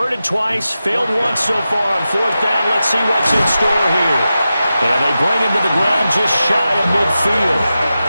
twice, failed once so far on fourth down. Let's see what's in store here. And they bring him to the ground just shy of midfield.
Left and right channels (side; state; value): both; inverted; correlation -0.92